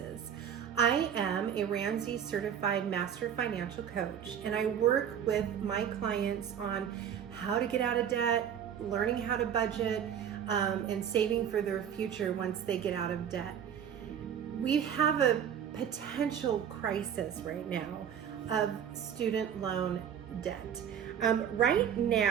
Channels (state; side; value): quieter; left; 8.8 dB